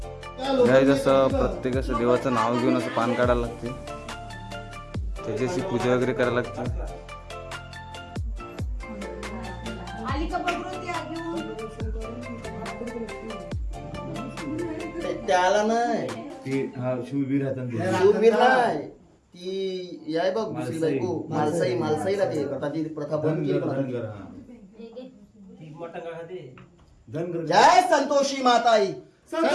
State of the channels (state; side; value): identical; both; correlation 1.00